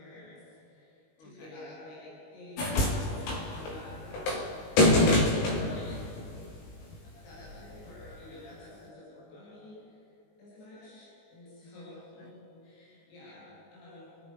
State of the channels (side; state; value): right; late; 19 ms